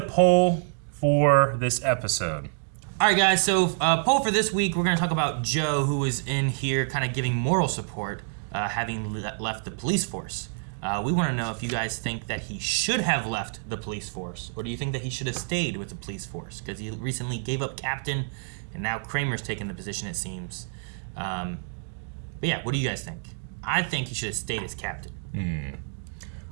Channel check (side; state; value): left; silent; digital silence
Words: for this episode. All right, guys. So poll for this week, we're going to talk about Joe, who was in here kind of giving moral support, having left the police force. We want to know if you guys think that he should have left the police force, or do you think that he should have stayed with the police force? Because he recently gave up captain, and now Kramer's taken the position, it seems. But yeah, what do you guys think? I think he should have stayed as captain.